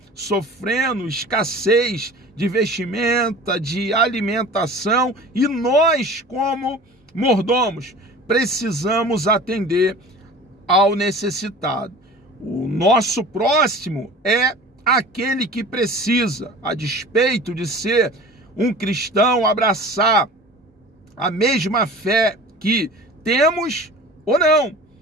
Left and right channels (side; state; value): both; normal; correlation 0.40